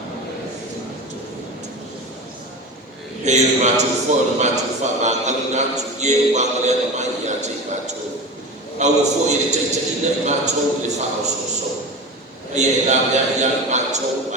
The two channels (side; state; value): both; normal; correlation 0.29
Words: Hei le mātou fo, le mātou wha ngāngari nātu, ie o wāngari ana mai i a te mātou. Au o fo i le teitaina i mātou le wha o so. Ai e la mea i a mātou